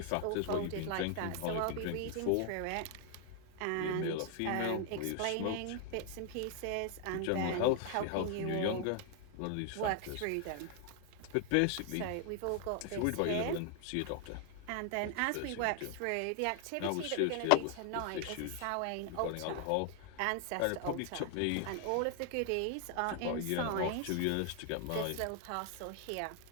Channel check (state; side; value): different; both; correlation 0.00